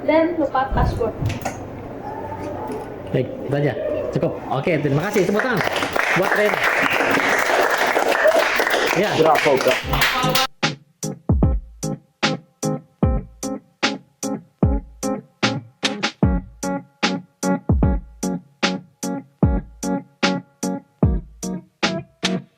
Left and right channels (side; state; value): both; identical; correlation 1.00